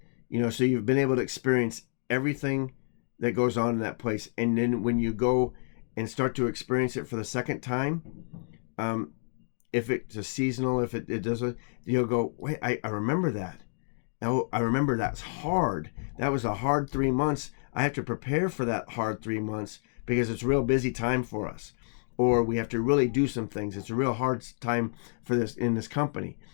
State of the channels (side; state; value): right; silent; digital silence